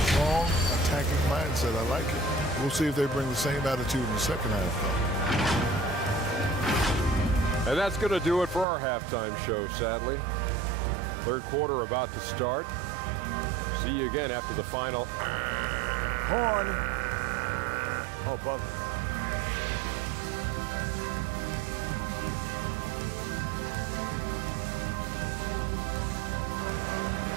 strong attacking mindset. I like it. We'll see if they bring the same attitude in the second half, though. And that's going to do it for our halftime show, sadly. Third quarter about to start. See you again after the final. Horn. Oh, buzzer.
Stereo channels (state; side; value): drops out; left; at 8.7 s